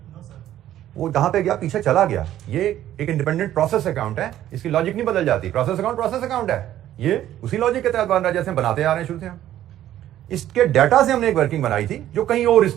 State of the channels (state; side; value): quieter; left; 12.5 dB